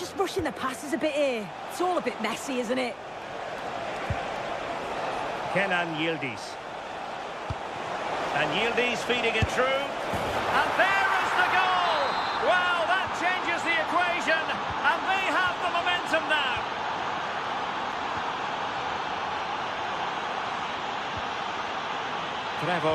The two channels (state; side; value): identical; both; correlation 1.00